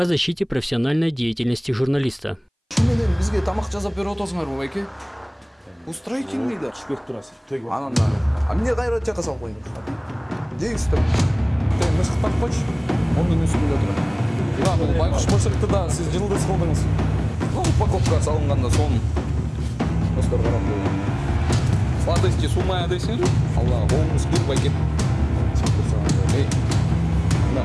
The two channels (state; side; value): identical; both; correlation 1.00